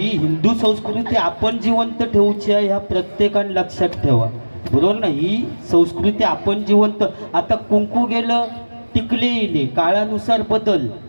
हिंदू संस्कृती आपण जिवंत ठेवूची आहे, ह्या प्रत्येकाने लक्षात ठेवा, बरोबर ना. ही संस्कृती आपण जिवंत. आता कुंकू गेलं टिकले येले, काळानुसार बदल.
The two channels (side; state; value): both; inverted; correlation -1.00